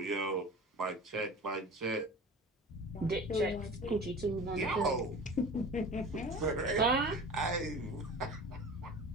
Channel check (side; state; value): both; normal; correlation 0.37